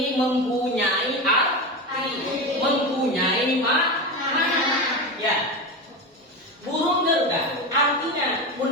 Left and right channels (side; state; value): both; normal; correlation 0.21